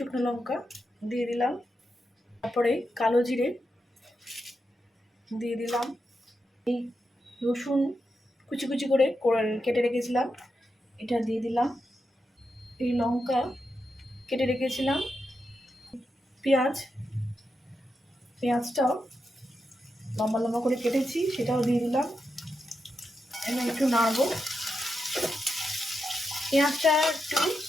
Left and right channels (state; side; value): normal; both; correlation 0.87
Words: লঙ্কা দিয়ে দিলাম, তারপরে কালো জিরে দিয়ে দিলাম, এই রসুন কুচি কুচি করে কেটে রেখেছিলাম এটা দিয়ে দিলাম, এই লঙ্কা কেটে রেখেছিলাম, পেঁয়াজটাও লম্বা লম্বা করে কেটেছি সেটাও দিয়ে দিলাম। এবার একটু নাড়বো। পেঁয়াজটা একটু